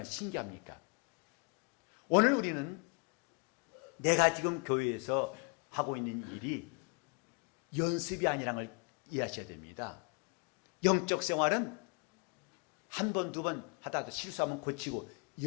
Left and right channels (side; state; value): right; quieter; 34.1 dB